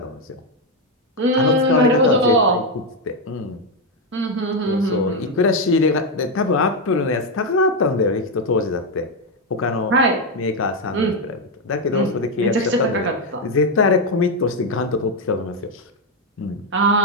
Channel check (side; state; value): both; normal; correlation 0.05